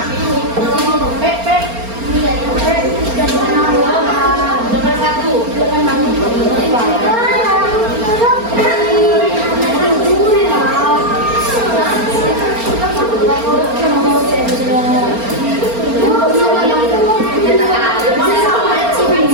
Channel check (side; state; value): left; late; 4.3 ms